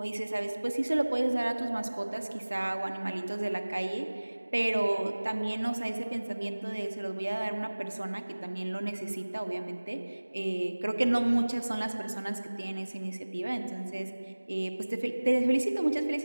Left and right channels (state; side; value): inverted; both; correlation -1.00